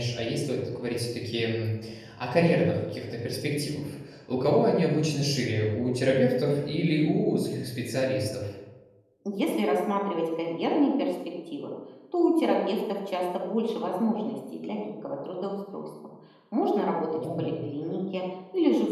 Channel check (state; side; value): identical; both; correlation 1.00